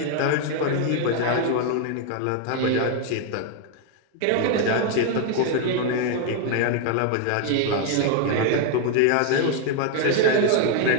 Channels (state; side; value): different; both; correlation 0.01